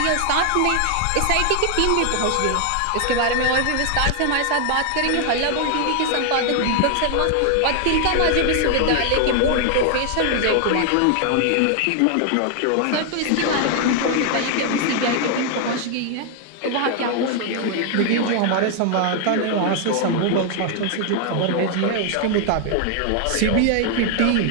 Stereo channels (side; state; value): both; different; correlation 0.00